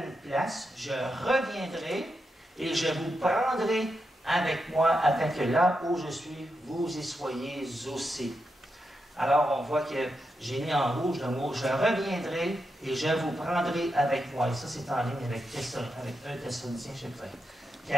place, je reviendrai et je vous prendrai avec moi afin que là où je suis, vous y soyez aussi. Alors, on voit que j'ai mis en rouge le mot « je reviendrai et je vous prendrai avec moi ». Et ça, c'est en ligne avec 1 Thessaloniciens, chapitre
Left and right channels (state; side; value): normal; both; correlation 0.86